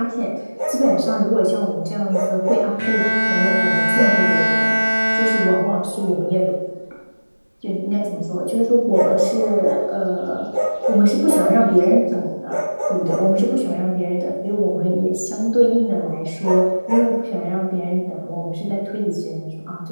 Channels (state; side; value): inverted; both; correlation -1.00